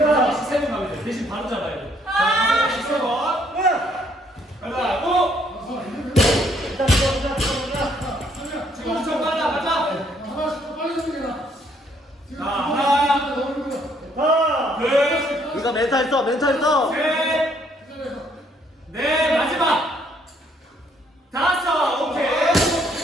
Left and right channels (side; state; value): both; normal; correlation 0.67